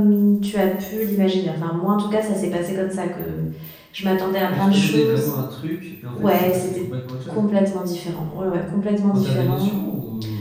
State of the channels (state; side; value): identical; both; correlation 1.00